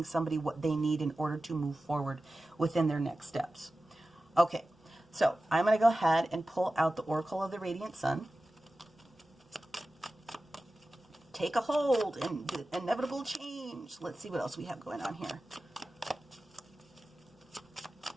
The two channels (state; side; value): normal; both; correlation 0.95